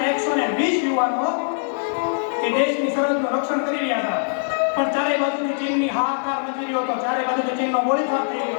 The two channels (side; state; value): right; silent; 60 dB below the other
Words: યુવાનો એ દેશની સરહદનું રક્ષણ કરી રહ્યા હતા. પણ ચારે બાજુથી ચીનની હાહાકાર મચી રહ્યો હતો. ચારે બાજુથી ચીનનો ગોળીબાર થઈ